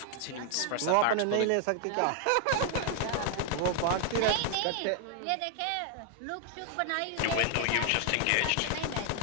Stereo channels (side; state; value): both; different; correlation 0.00